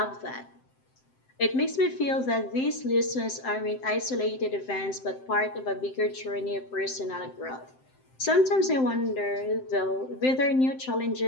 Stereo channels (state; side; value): late; right; 7.7 ms